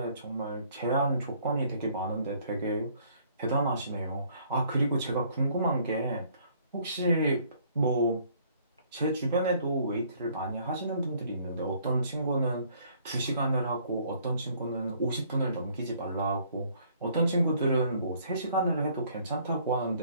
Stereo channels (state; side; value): inverted; both; correlation -0.61